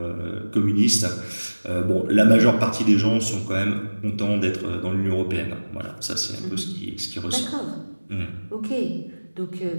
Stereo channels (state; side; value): inverted; both; correlation -1.00